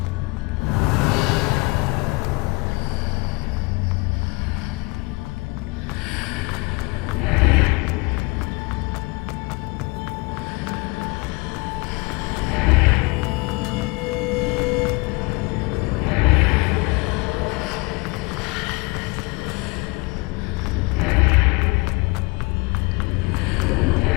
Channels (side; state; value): right; quieter; 26.7 dB